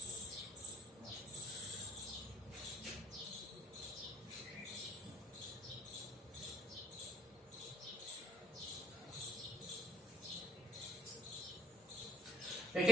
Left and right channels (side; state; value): both; normal; correlation 0.74